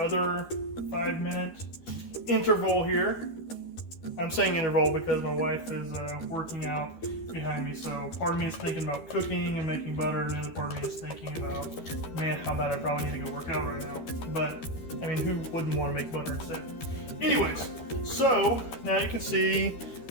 5-minute interval here. I'm saying interval because my wife is working out behind me, so part of me is thinking about cooking and making butter, and the other part of me is thinking about, man, how bad I probably need to go work out right now. But, I mean, who wouldn't want to make butter instead? Anyways, so now you can see,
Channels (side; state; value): right; late; 13 ms